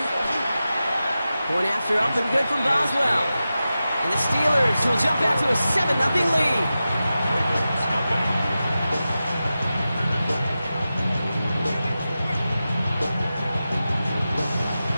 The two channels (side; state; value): both; inverted; correlation -0.93